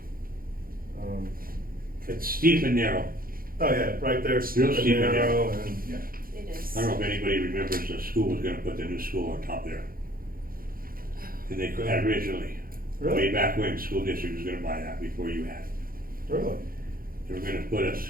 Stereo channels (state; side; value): late; left; 0.42 ms